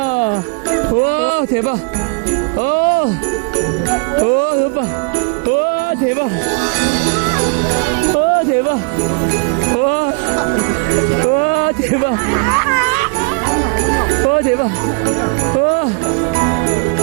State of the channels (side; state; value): left; quieter; 35.7 dB